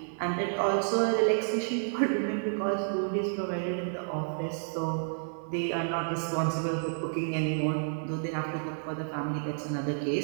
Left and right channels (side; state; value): left; silent; 58 dB below the other